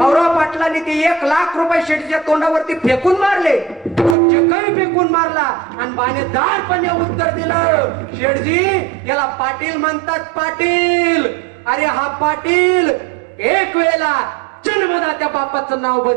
पाटलांनी ते 1 लाख रुपये शेठच्या तोंडावरती फेकून मारले, चिकही फेकून मारला आणि बाणेदारपणे उत्तर दिलं, शेठजी याला पाटील म्हणतात पाटील. अरे हा पाटील एक वेळेला जन्मदात्या बापाचं नाव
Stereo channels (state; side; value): drops out; left; at 4.2 s